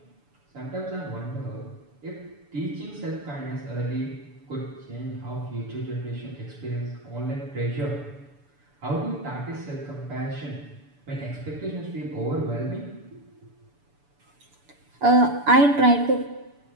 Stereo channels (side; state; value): left; late; 6.9 ms